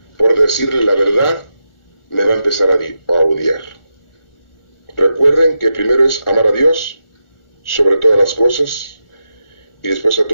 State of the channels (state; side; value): late; right; 1.4 ms